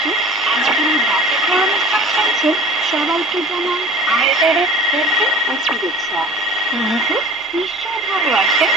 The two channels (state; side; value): normal; both; correlation 0.42